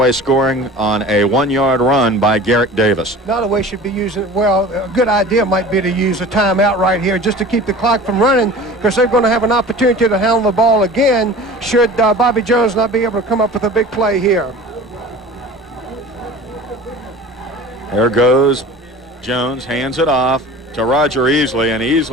scoring on a 1-yard run by Garrick Davis. Nottoway should be using, well, a good idea might be to use a timeout right here just to keep the clock from running, because they're going to have an opportunity to handle the ball again should Bobby Jones not be able to come up with a big play here. There goes Jones, hands it off to Roger Easley, and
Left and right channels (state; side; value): normal; both; correlation 0.40